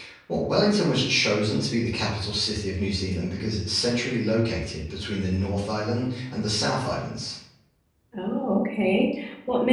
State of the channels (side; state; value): both; identical; correlation 1.00